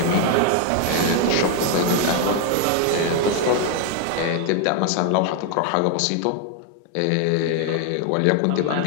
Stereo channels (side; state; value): both; different; correlation 0.00